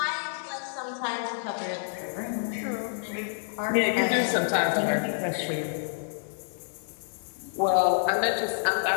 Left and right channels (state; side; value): silent; right; digital silence